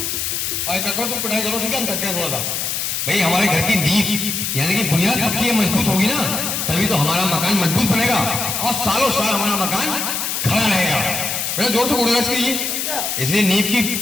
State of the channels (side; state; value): left; noise; hiss, 1 dB below the sound